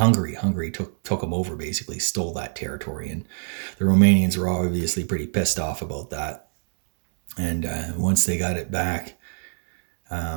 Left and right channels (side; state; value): left; silent; digital silence